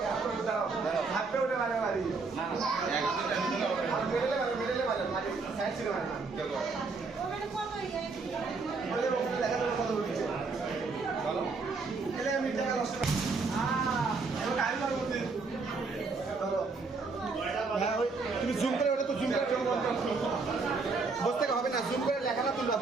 দাঁড়াও হাতে উঠে মারে মারি না না আর মিডলে মারে সাইড থেকে মারে দেখো ওখানে কত হই যায় বলে দেখা তো কত হচ্ছে চলো এলে আমি টাকা নষ্ট তো টাইম লাগবে চলো তুমি জুম করে ওটা তো জুম করে জন্য বসতে হবে না জুম করে লেখাটা তুলবা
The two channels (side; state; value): left; quieter; 4.2 dB